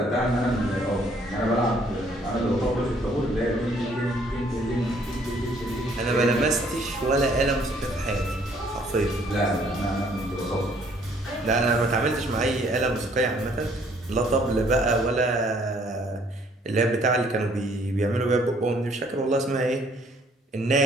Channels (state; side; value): normal; both; correlation 0.62